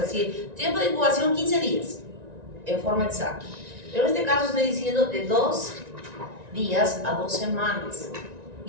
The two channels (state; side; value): late; left; 1.9 ms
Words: decir, tiempo de incubación 15 días, en forma exacta. Pero en este caso estoy diciendo de 2 días a 2 semanas.